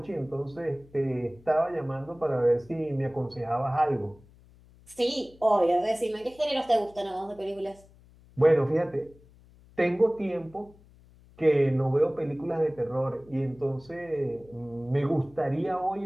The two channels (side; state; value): left; noise; hum, 26 dB below the sound